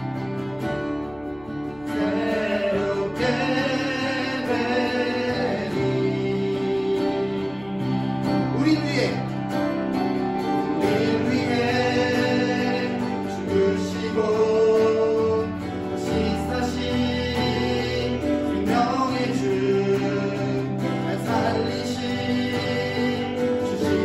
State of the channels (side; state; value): left; noise; hum, 23 dB below the sound